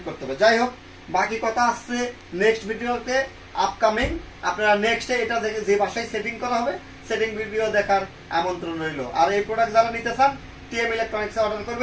করতে হবে। যাই হোক, বাকি কথা আসছে নেক্সট ভিডিওতে, আপকামিং। আপনারা নেক্সটে এটা যে বাসায় সেটিং করা হবে সেটিং ভিডিও দেখার আমন্ত্রণ রইল। আর এই প্রোডাক্ট যারা নিতে চান টিএম ইলেকট্রনিক্সে অর্ডার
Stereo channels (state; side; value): identical; both; correlation 1.00